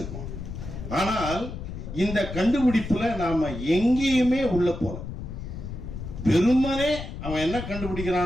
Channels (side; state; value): left; noise; rumble, 8 dB below the sound